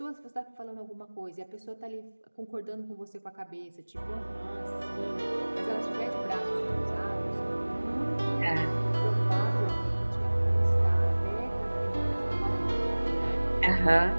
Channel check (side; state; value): both; inverted; correlation -1.00